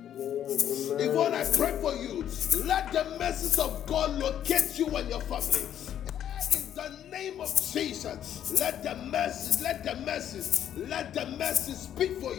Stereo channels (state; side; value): quieter; right; 10.3 dB